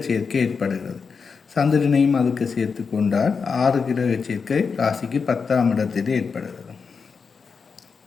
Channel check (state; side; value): quieter; right; 5.4 dB